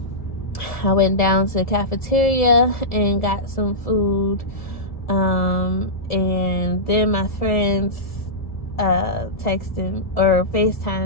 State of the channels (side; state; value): right; late; 1.7 ms